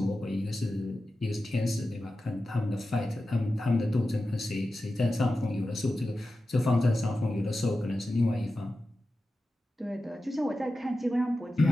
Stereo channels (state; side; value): normal; both; correlation 0.93